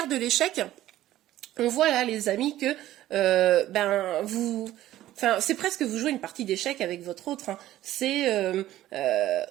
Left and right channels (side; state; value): left; quieter; 14.1 dB